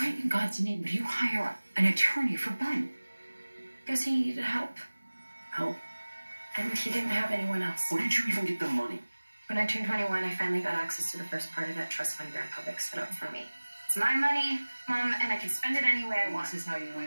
in God's name would you hire an attorney for Ben? Because he needed help. Help? And he didn't have anyone else. Where did you even get the money? When I turned 21, I finally got access to the first part of that trust fund Grandpa set up for me. It's my money, Mom, and I can spend it any way I want. This is how you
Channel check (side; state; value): both; inverted; correlation -1.00